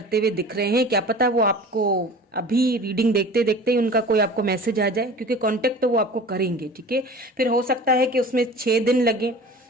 हुए दिख रहे हैं। क्या पता वो आपको अभी रीडिंग देखते देखते ही उनका कोई आपको मैसेज आ जाए, क्योंकि कांटेक्ट तो वो आपको करेंगे। ठीक है, फिर हो सकता है कि उसमें 6 दिन लगे,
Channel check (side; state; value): both; normal; correlation 0.40